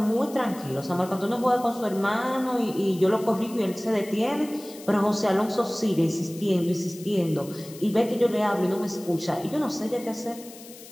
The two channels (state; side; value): noise; left; hiss, 18 dB below the sound